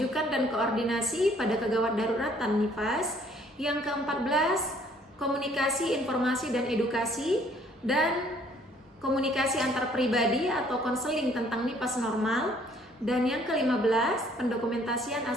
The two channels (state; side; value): normal; both; correlation 0.61